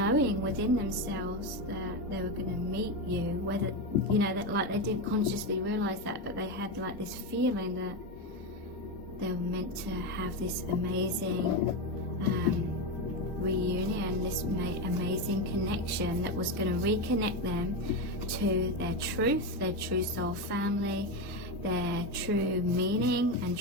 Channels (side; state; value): both; normal; correlation 0.13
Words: within themselves that they were going to meet you, whether, you know, that like they didn't consciously realize that, but they had like this feeling that they were meant to have this amazing reunion, this amazing connection that was going to reconnect them to their true soul family, their true meaning and